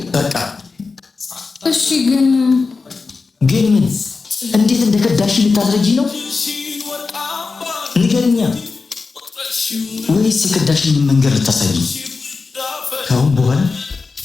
በቃ እሺ ግን ምን እንዴት እንደከዳሽ ልታስረጂ ነው? ንገርኛ። ወይስ የከዳሽን መንገድ ልታሳይ? ከአሁን በኋላ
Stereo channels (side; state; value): right; quieter; 4.3 dB